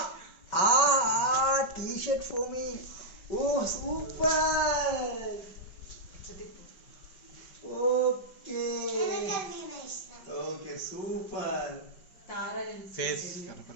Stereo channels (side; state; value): right; late; 5.3 ms